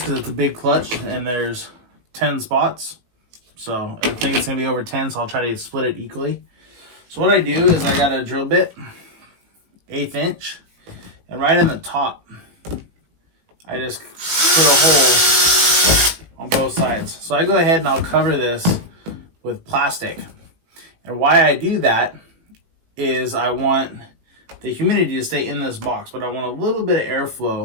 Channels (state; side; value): late; left; 18 ms